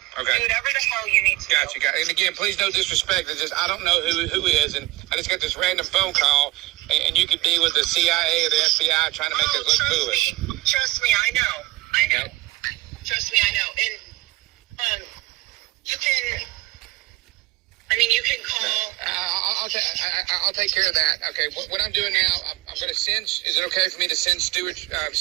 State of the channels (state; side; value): quieter; left; 19.2 dB